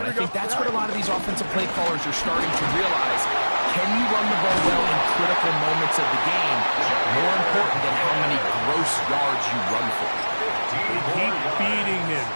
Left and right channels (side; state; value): both; inverted; correlation -1.00